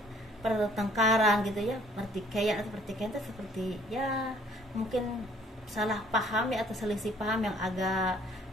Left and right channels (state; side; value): normal; both; correlation 0.59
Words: gitu ya, pertikaian itu seperti ya mungkin salah paham ya, atau selisih paham yang agak